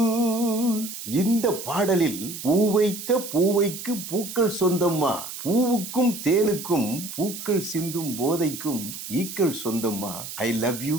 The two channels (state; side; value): noise; right; hiss, 9 dB below the sound